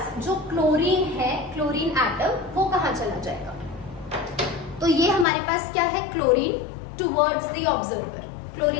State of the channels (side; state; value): right; drops out; at 5.2 s